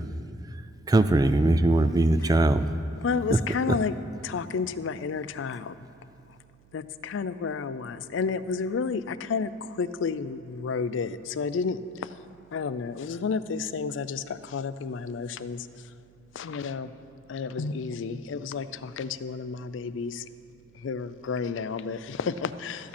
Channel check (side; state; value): right; noise; hum, 28 dB below the sound